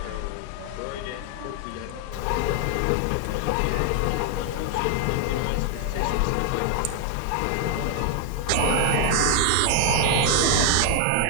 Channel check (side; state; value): both; different; correlation 0.00